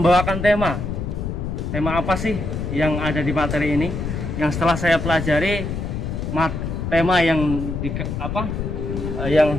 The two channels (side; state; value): left; noise; rumble, 4 dB below the sound